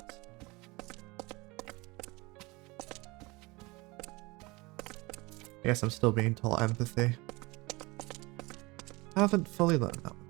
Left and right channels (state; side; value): quieter; left; 24.2 dB